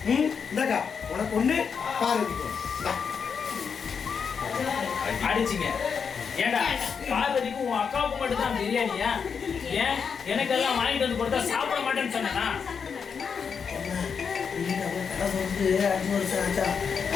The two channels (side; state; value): right; quieter; 6.3 dB